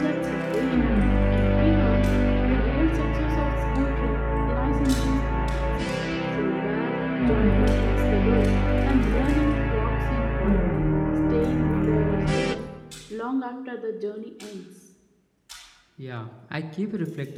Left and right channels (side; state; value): both; identical; correlation 1.00